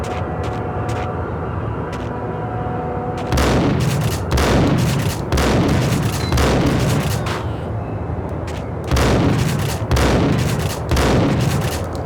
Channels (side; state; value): both; identical; correlation 1.00